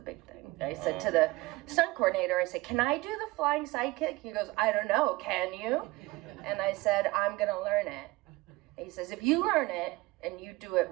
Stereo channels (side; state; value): left; quieter; 21.3 dB